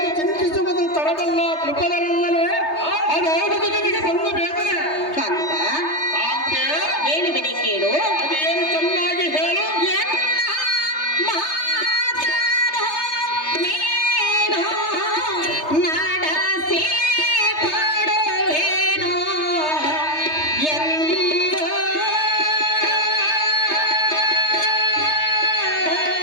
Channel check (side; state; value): right; late; 3.3 ms